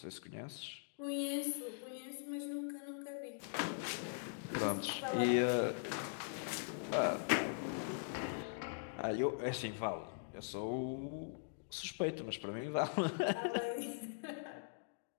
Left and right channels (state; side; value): silent; right; digital silence